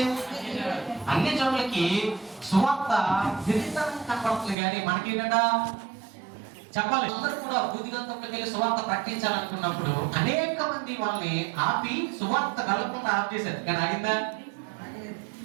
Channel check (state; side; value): drops out; left; at 4.5 s